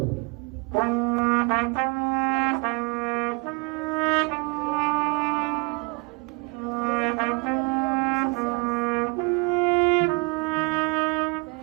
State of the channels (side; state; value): left; quieter; 30.2 dB